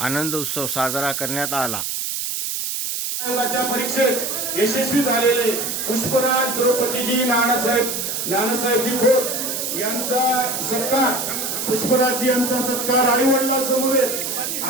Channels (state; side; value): noise; right; hiss, 3 dB below the sound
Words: उत्सव साजरा करण्यात आला। आयोगाच्या परीक्षेत यशस्वी झालेले पुष्पराज द्रौपदीजी नानासाहेबजी खोत यांचा सत्कार, पुष्पराजजी यांचा सत्कार आई वडिलांसमवेत